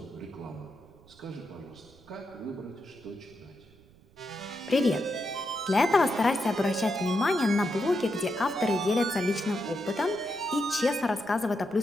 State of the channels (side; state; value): right; noise; rumble, 27 dB below the sound